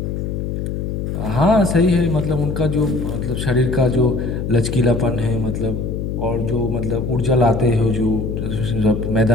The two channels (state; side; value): noise; left; hum, 3 dB below the sound